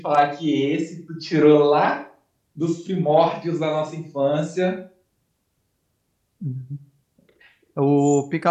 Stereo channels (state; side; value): identical; both; correlation 1.00